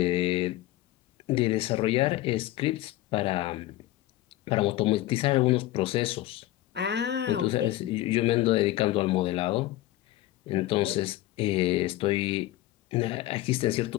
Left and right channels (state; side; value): quieter; right; 15.7 dB